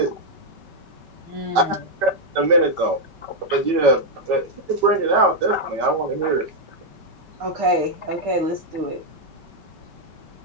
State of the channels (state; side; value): late; left; 5.2 ms